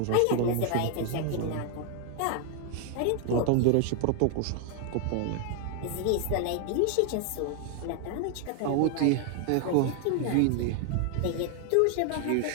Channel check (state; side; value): different; both; correlation 0.00